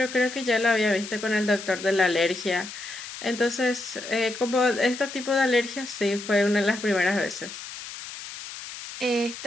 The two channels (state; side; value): noise; left; hiss, 11 dB below the sound